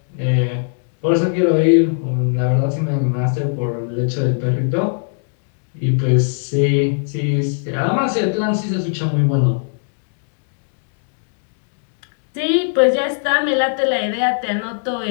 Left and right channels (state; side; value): silent; right; digital silence